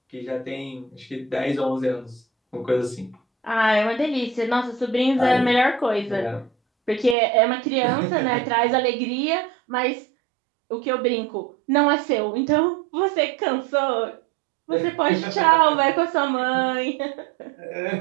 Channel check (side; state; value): left; drops out; at 7.2 s